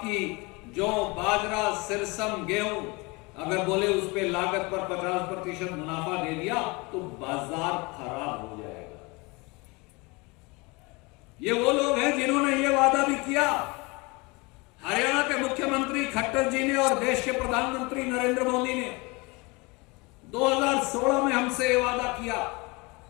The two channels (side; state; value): right; quieter; 26.4 dB